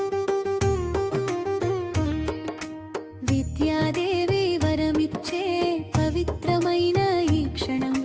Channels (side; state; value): both; identical; correlation 1.00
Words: విద్యాదేవి వరమిచ్చే పవిత్రమైన ఈ క్షణం